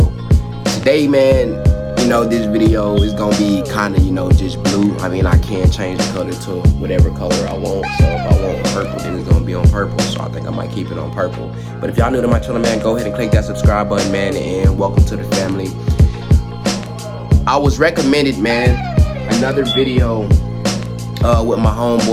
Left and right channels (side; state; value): both; identical; correlation 1.00